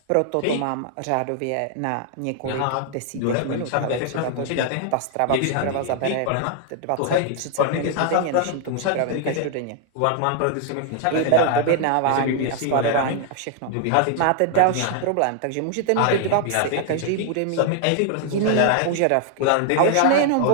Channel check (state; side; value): different; both; correlation 0.00